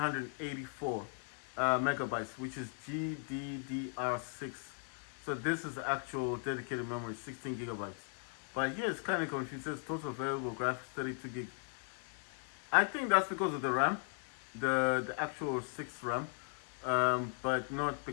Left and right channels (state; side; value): silent; right; 53 dB below the other